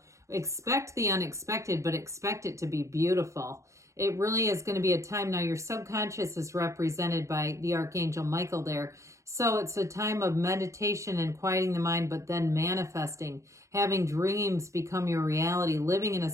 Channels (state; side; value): late; left; 0.15 ms